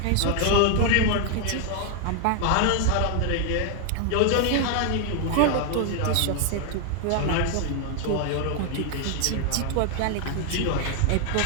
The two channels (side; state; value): both; different; correlation 0.00